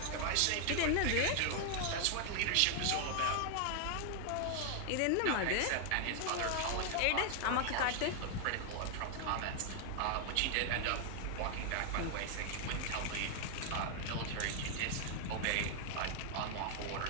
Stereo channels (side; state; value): both; different; correlation 0.00